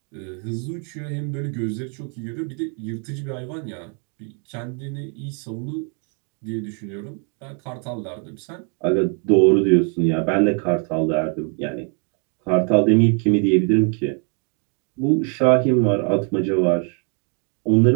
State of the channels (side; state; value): left; quieter; 39.0 dB